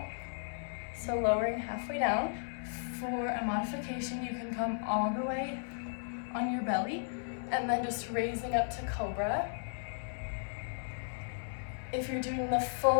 So lowering halfway down. For a modification, you can come all the way on your belly and then just raising up to cobra. If you're doing the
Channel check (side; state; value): right; silent; digital silence